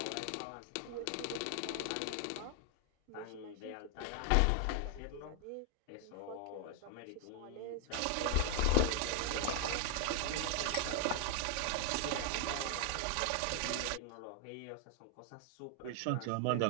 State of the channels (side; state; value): both; different; correlation 0.00